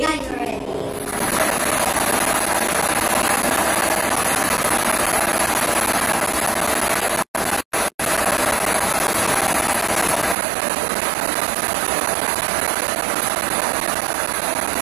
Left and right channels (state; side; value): drops out; left; at 10.4 s